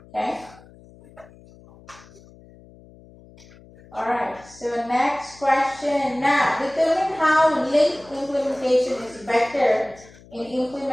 Okay? Alright, so next question. Now, determine how link implementation is better in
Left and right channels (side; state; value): left; noise; hum, 23 dB below the sound